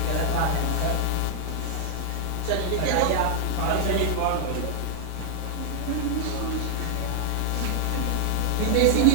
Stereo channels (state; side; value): different; both; correlation 0.00